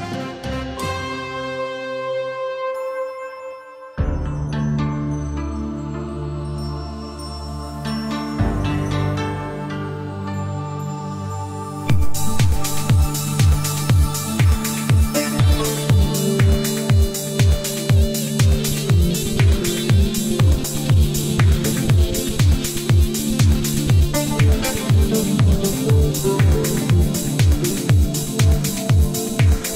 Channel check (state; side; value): identical; both; correlation 1.00